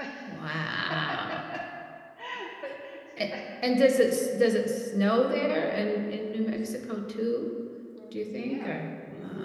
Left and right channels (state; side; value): identical; both; correlation 1.00